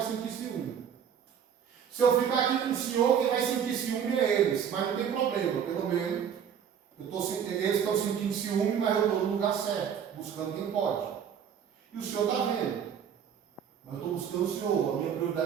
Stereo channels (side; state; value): left; quieter; 8.2 dB